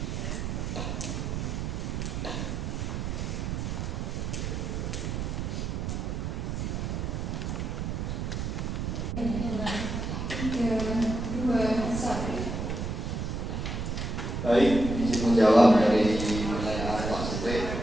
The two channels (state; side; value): noise; right; rumble, 3 dB below the sound